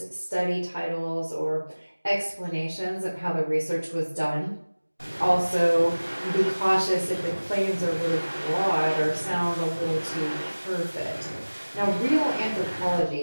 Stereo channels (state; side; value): inverted; both; correlation -1.00